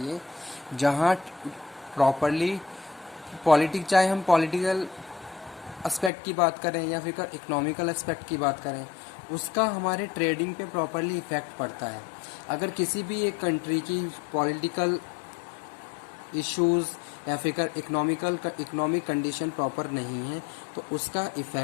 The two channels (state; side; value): drops out; right; at 6.1 s